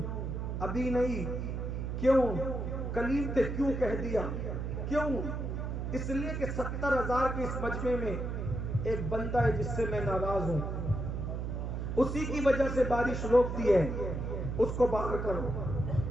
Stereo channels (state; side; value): noise; right; hum, 3 dB below the sound